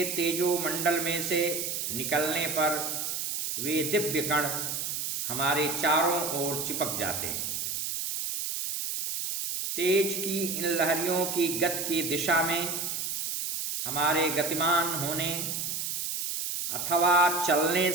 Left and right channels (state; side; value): noise; right; hiss, 2 dB below the sound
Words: तेजो मंडल में से निकलने पर वे दिव्य कण हमारे चारों ओर चिपक जाते हैं। तेज की इन लहरियों की गति की दिशा में हमारे गतिमान होने अथवा चलने